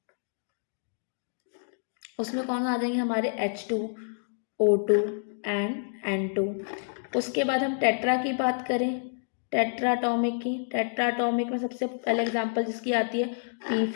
उसमें कौन आ जाएंगे हमारे H2, O2 एंड N2। उसके बाद हम टेट्रा की बात करें, टेट्राटॉमिक की, टेट्राटॉमिक में सबसे पहले एग्जांपल जिसकी आती है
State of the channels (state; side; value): silent; right; digital silence